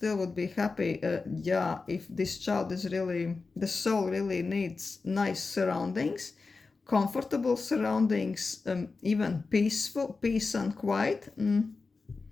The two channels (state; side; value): quieter; right; 4.1 dB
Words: would be happy. Yeah, if this child is really, the soul really needs nice surroundings, comfortable surroundings, even peace and quiet.